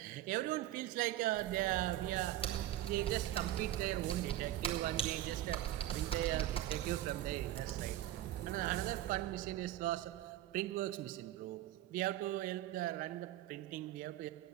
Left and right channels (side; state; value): left; quieter; 13.6 dB